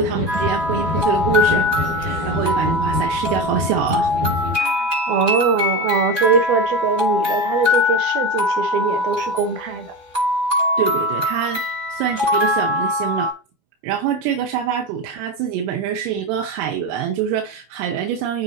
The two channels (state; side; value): late; left; 12 ms